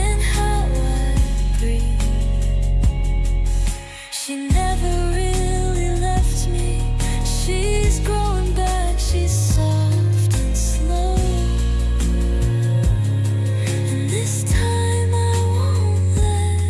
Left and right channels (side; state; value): both; identical; correlation 1.00